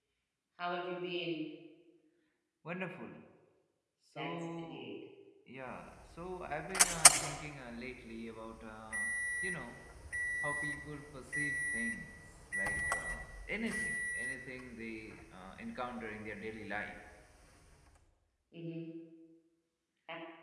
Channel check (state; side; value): identical; both; correlation 1.00